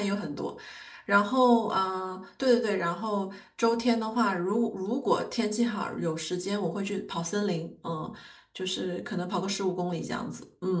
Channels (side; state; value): both; identical; correlation 1.00